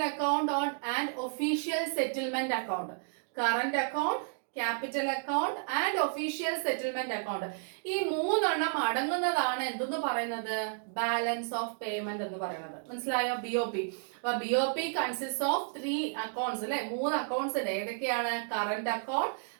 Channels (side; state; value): left; silent; digital silence